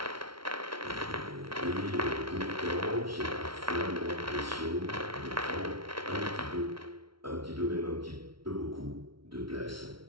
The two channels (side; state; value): left; late; 0.74 ms